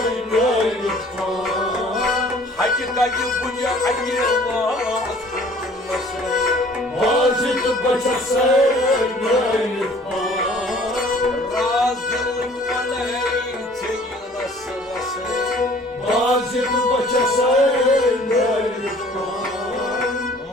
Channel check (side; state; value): both; normal; correlation 0.53